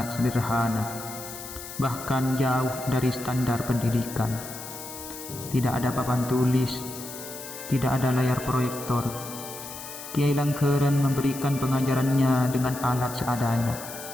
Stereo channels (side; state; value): left; noise; hiss, 11 dB below the sound